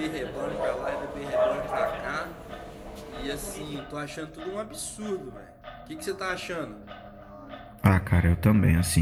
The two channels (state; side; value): identical; both; correlation 1.00